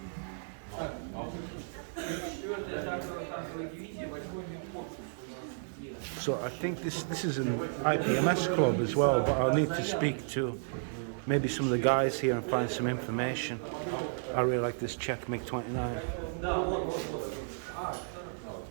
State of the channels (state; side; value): silent; left; digital silence